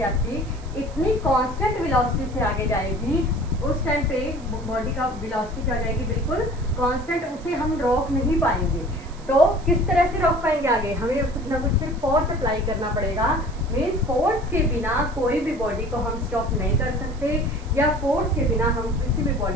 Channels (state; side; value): noise; right; hiss, 24 dB below the sound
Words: आती इतनी कांस्टेंट वेलोसिटी से आगे जाएगी, उस टाइम पे बॉडी का वेलोसिटी क्या हो जाएगी, बिल्कुल कांस्टेंट, उसे हम रोक नहीं पाएंगे। तो किस तरह से रोक पाएंगे आगे, हमें कुछ ना कुछ फिर फोर्स अप्लाई करना पड़ेगा। मीन्स फोर्स के बिना कोई भी बॉडी को हम स्टॉप नहीं कर सकते, या फोर्स के बिना हम किसी भी